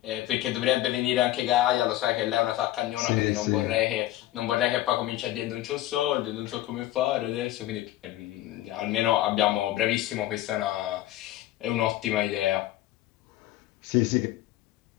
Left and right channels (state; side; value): quieter; right; 14.8 dB